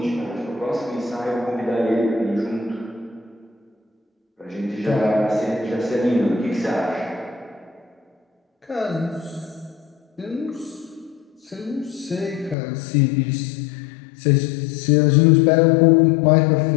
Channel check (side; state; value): right; drops out; at 12.6 s